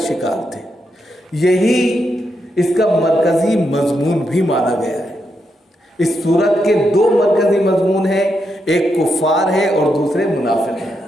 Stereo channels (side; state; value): both; normal; correlation 0.82